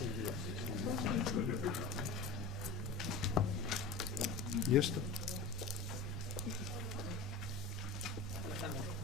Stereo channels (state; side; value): quieter; right; 3.9 dB